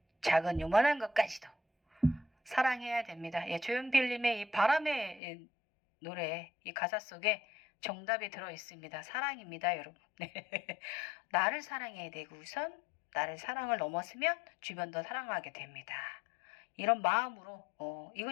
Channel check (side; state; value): right; drops out; at 5.2 s